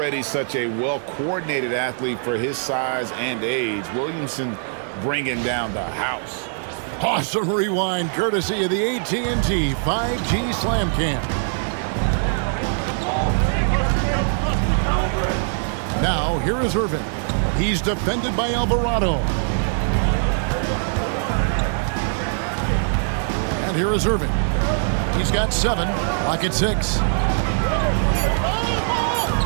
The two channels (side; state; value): left; silent; 64 dB below the other